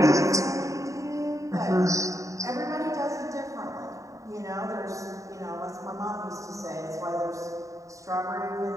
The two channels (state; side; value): late; left; 0.16 ms